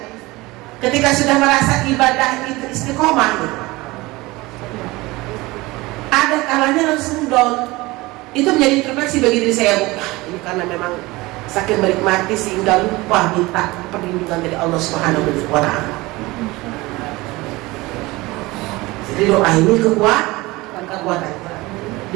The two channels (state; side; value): quieter; left; 21.2 dB